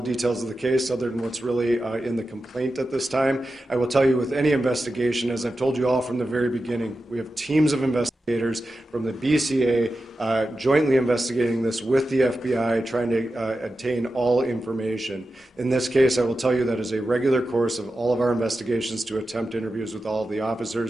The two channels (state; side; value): normal; both; correlation 0.91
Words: details of the case other than what's really in the complaint at this time. I will tell you with any investigation, as I've told you all from the very beginning, we have teams of investigators from the BCA jointly investigating this with the FBI, trying to obtain all information. In this case, I will tell you that is a regular course of all of our investigations to attempt interviews with all of the